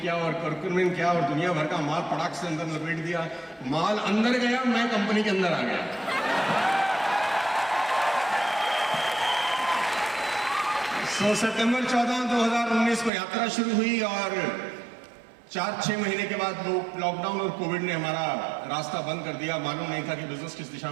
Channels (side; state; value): left; drops out; at 13.1 s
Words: और कर्कुमिन क्या और दुनिया भर का माल पटाख से अंदर लपेट दिया। माल अंदर गया, मैं कंपनी के अंदर आ गया। सितंबर 14, 2019 को यात्रा शुरू हुई और 4-6 महीने के बाद लॉकडाउन और कोविड ने हमारा रास्ता बंद कर दिया। मालूम नहीं था कि बिजनेस किस दिशा